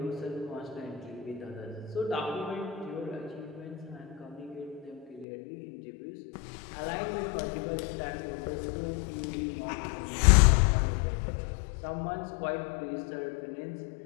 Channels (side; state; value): right; drops out; at 5.2 s